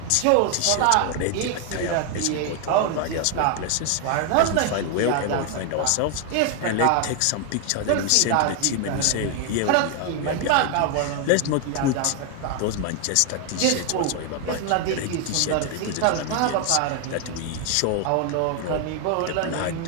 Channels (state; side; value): different; both; correlation 0.00